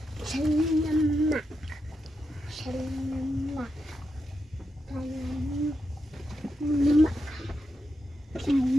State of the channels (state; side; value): normal; both; correlation 0.86